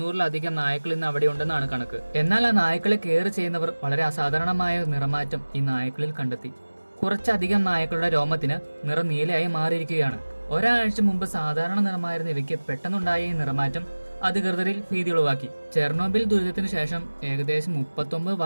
നായ്ക്കൾ ഇന്ന് അവിടെ ഉണ്ടെന്നാണ് കണക്ക്. എന്നാൽ ആ നായ്ക്കളെ കെയർ ചെയ്യുന്നവർ വളരെ അസാധാരണമായ നിറമാറ്റം ഈ നായ്ക്കളിൽ കണ്ടെത്തി. കുറച്ചധികം നായ്ക്കളുടെ രോമത്തിന് നിറം നീലയായി മാറിയിരിക്കുകയാണ്. ഒരാഴ്ച മുമ്പ് സാധാരണ നിറമായിരുന്ന ഇവയ്ക്ക് പെട്ടെന്നുണ്ടായ ഈ നിറമാറ്റം അധികൃതരിൽ ഭീതി ഉളവാക്കി. ചെർണോബിൽ ദുരിതത്തിന് ശേഷം ഏകദേശം 39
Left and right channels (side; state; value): both; inverted; correlation -1.00